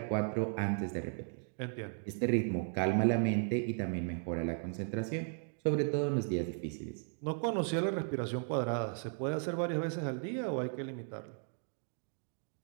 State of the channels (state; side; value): silent; left; 54 dB below the other